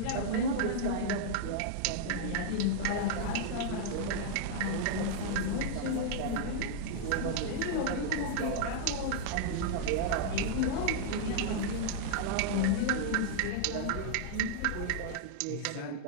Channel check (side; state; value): both; different; correlation -0.01